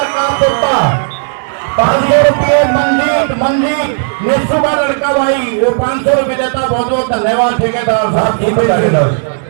का पुट्टा 500 रुपये मंजीत ने सुबह लड़का भाई वो 500 रुपये देता। बहुत बहुत धन्यवाद ठेकेदार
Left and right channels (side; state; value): left; silent; digital silence